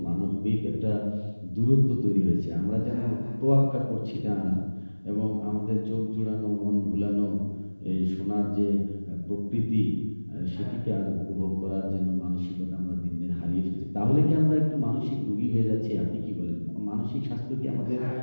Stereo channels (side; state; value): both; inverted; correlation -1.00